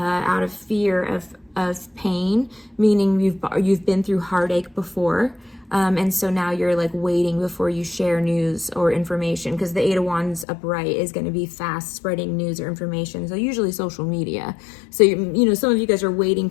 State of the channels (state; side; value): drops out; right; at 10.5 s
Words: of fear of pain, meaning you've been through heartache before. And so now you're like waiting before you share news or information, because the Eight of Wands upright is going to be fast spreading news or information. So usually social media. So, you know, some of you guys are waiting